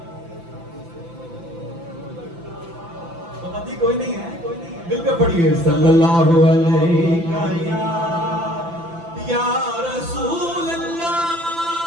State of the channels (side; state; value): left; late; 5.9 ms